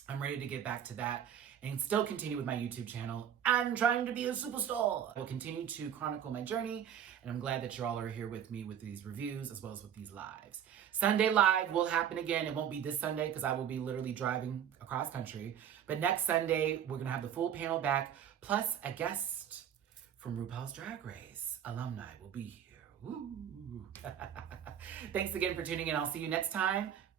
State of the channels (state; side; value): quieter; left; 9.3 dB